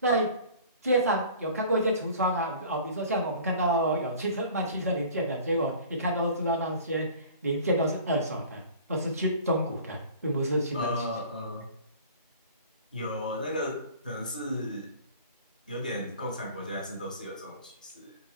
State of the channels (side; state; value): both; inverted; correlation -0.45